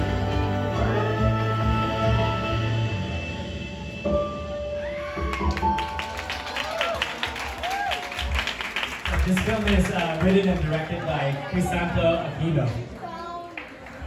This film is written and directed by Crisanto Aquino.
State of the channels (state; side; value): identical; both; correlation 1.00